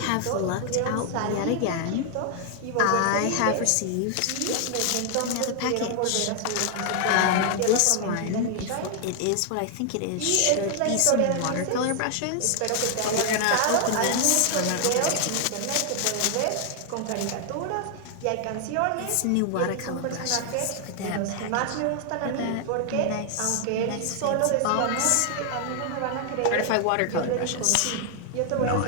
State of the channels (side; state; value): both; different; correlation 0.00